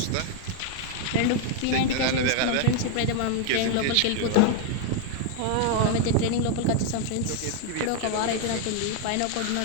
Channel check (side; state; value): both; different; correlation 0.00